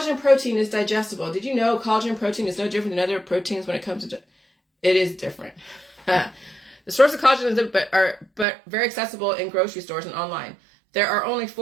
protein is digestible. Did you know collagen protein is no different than other proteins when it comes to... It is different. The source of collagen is but very accessible in grocery stores and online. There are only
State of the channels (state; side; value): drops out; left; at 8.5 s